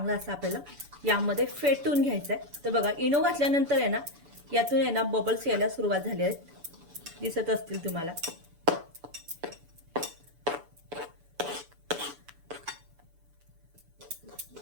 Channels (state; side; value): late; left; 7.0 ms